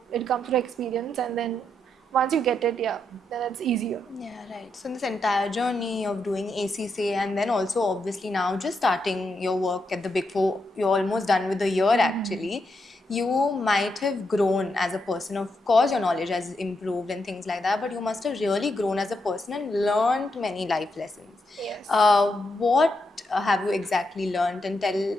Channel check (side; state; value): both; normal; correlation 0.82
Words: it comes through experience, and then once you get it, yeah, then it's easier. Yeah, right. So, in this entire journey of doing ACCA and then also obviously now just starting your work at the Big Four, you're almost done with the year actually. You might have grown as a person. Of course, your knowledge has improved and things like that, but you must have really grown as a person and learned many life lessons. Yes. What have you exactly learned? And tell